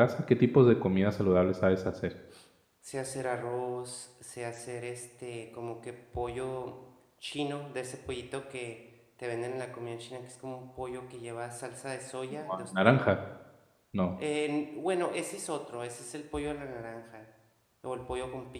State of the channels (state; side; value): identical; both; correlation 1.00